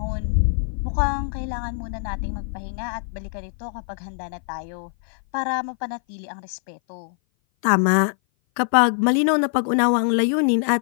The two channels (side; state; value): right; silent; 58 dB below the other